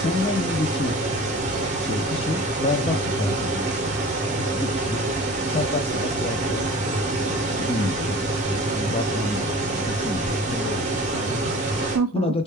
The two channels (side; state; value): both; normal; correlation 0.41